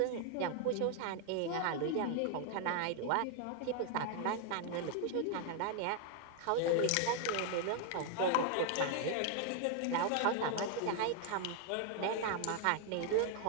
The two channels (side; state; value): both; different; correlation 0.00